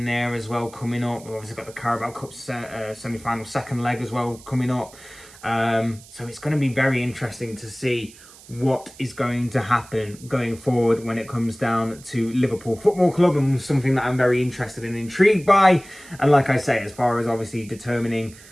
there as well coming up. We've obviously got the Carabao Cup semi-final second leg as well coming up. So it's going to be very interesting to see what is going to happen going forward when it comes down to Liverpool Football Club, and something that I'm very interested and intrigued by. And like I say, as far as obviously determining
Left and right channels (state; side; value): noise; right; hiss, 21 dB below the sound